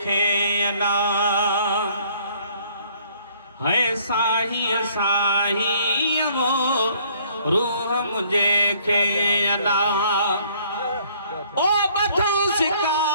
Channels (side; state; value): both; inverted; correlation -0.61